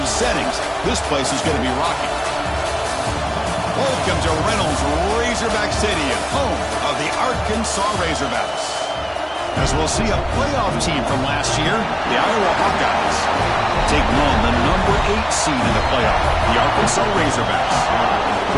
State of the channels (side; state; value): both; identical; correlation 1.00